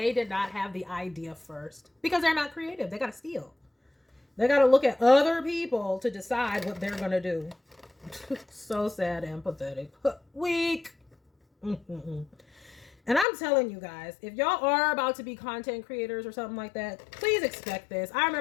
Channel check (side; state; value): right; drops out; at 13.2 s